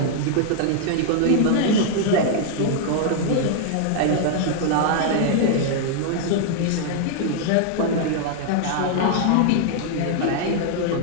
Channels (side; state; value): both; different; correlation -0.01